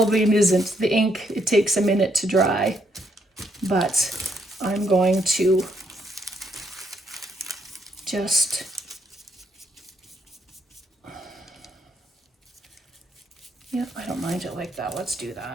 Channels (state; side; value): normal; both; correlation 0.74